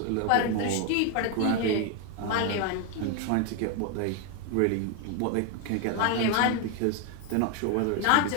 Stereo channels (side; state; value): both; different; correlation 0.01